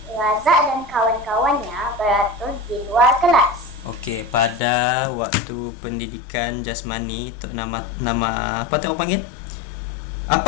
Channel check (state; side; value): drops out; right; at 4.6 s